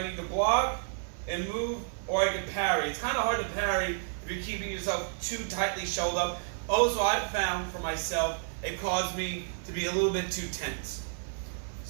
need to block and move, or I can parry. It's kind of hard to parry if you're keeping yourself too tightly shelled up. Also, I've found for myself, it caused me to be a little bit too tense.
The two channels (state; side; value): silent; left; 57 dB below the other